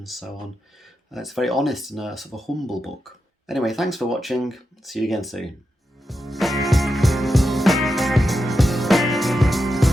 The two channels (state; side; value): normal; both; correlation 0.88